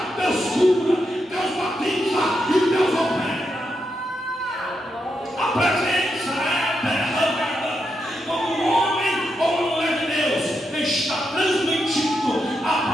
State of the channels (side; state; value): both; normal; correlation 0.84